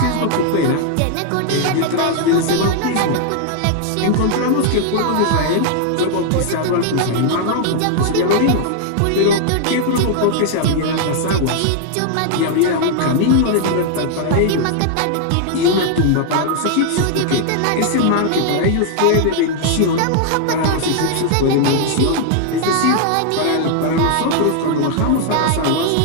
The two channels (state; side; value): different; both; correlation 0.00